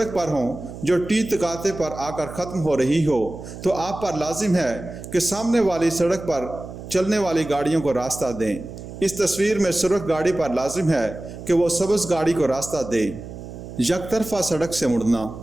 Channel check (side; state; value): right; noise; hum, 12 dB below the sound